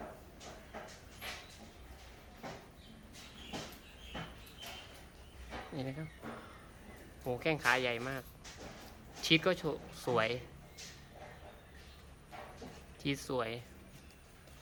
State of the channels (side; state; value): both; identical; correlation 1.00